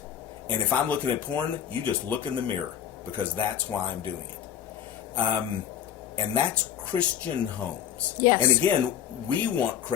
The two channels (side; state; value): right; quieter; 9.5 dB